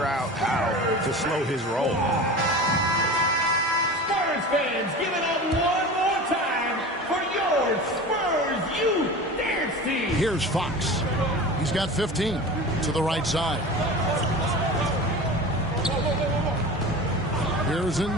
out how to slow his roll. Spurs fans, give it up one more time for your Spurs Youth Dance Team. Here's Fox. He's got 15 to the right side. Here's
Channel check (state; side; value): normal; both; correlation 0.33